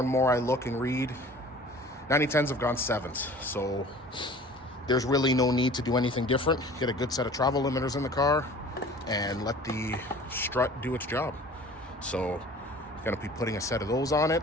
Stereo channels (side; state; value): both; normal; correlation 0.46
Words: more I look and read, 9010s have gone 7s. So there's really no need to do anything different. Get a good set of travel limiters in the car and let the strut do its job. So I'm going to be putting a set of those on it,